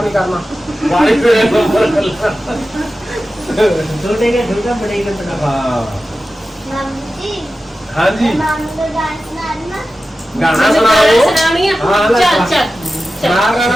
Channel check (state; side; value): normal; both; correlation 0.94